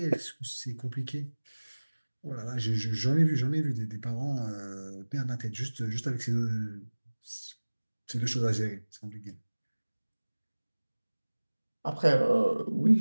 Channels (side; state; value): both; inverted; correlation -1.00